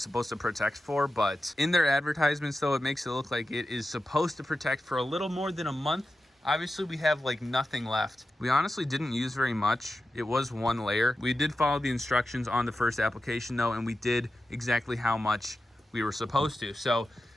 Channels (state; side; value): normal; both; correlation 0.92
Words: to protect for, but in their advertisements though, it makes it look like it is supposed to protect for a little more than a month. Obviously we have like nothing left. We honestly didn't use very much. It was 1 layer. We did follow the instructions on the first application though, and we did exactly how much we were supposed to. So